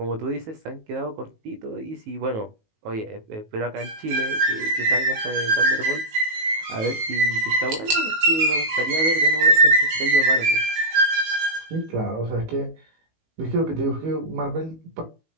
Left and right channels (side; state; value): left; late; 19 ms